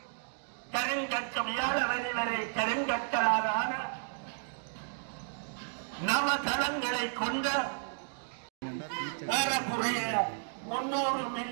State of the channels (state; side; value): silent; left; digital silence